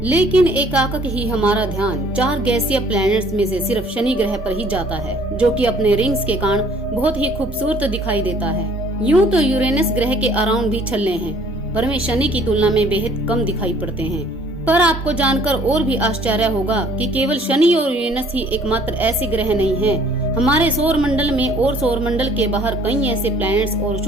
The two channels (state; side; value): normal; both; correlation 0.57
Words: लेकिन एकाएक ही हमारा ध्यान 4 गैसीय प्लैनेट्स में से सिर्फ शनि ग्रह पर ही जाता है, जो कि अपने रिंग्स के कारण बहुत ही खूबसूरत दिखाई देता है। यूं तो यूरेनस ग्रह के अराउंड भी छल्ले हैं, पर वे शनि की तुलना में बेहद कम दिखाई पड़ते हैं। पर आपको जानकर और भी आश्चर्य होगा कि केवल शनि और यूरेनस ही एकमात्र ऐसे ग्रह नहीं हैं। हमारे सौर मंडल में और सौर मंडल के बाहर कई ऐसे प्लैनेट्स और